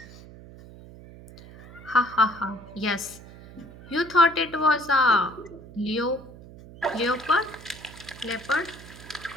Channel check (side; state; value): right; noise; hum, 18 dB below the sound